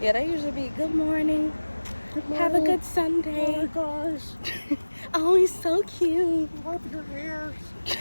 they usually be, good morning. Have a good Sunday. Oh my gosh. Oh, he's so cute. Wipe your ears.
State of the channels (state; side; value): inverted; both; correlation -1.00